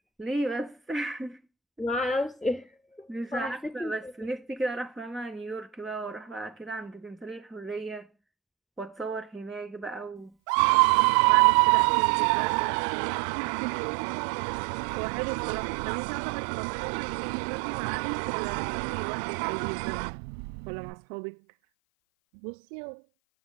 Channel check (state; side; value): drops out; left; at 10.3 s